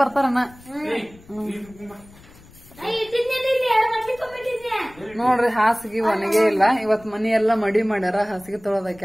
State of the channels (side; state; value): left; noise; rumble, 24 dB below the sound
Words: ಬರ್ತಾರಣ್ಣ. ನೋಡ್ರಿ ಹಾಸಿಗೆ ಒಣಗೆ ಇಲ್ಲ. ಇವತ್ ಮನಿ ಎಲ್ಲಾ ಮಡಿ ಮಾಡ್ಯಾರ. ಹಾಸಿಗೆ